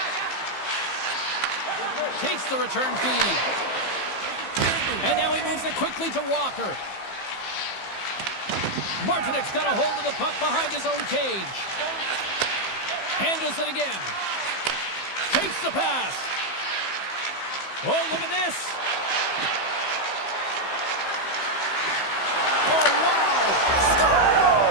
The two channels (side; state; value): right; late; 15 ms